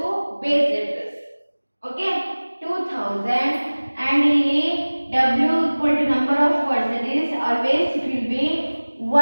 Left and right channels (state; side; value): inverted; both; correlation -1.00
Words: base address. Okay, 2000 and ಇಲ್ಲಿ w equal to number of words, that is always it will be